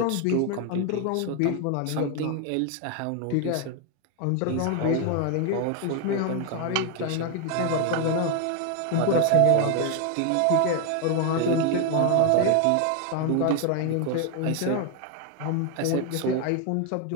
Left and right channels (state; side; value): different; both; correlation 0.01